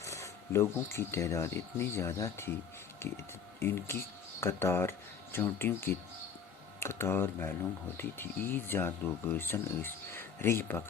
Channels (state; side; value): quieter; right; 6.8 dB